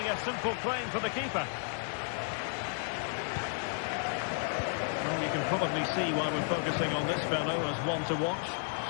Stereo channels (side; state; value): right; silent; 56 dB below the other